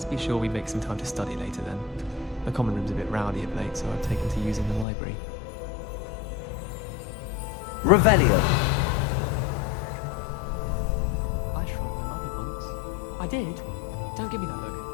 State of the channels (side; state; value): right; drops out; at 4.9 s